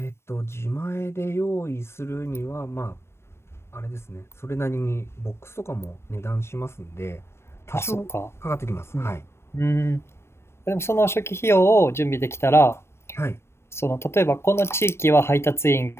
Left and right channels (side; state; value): right; late; 0.12 ms